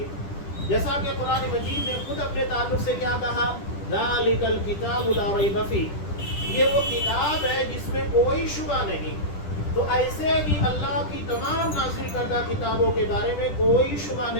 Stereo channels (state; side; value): late; right; 10 ms